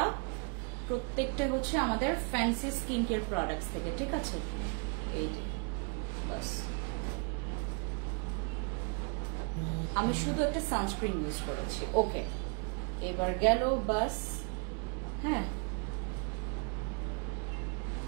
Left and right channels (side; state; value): left; quieter; 36.7 dB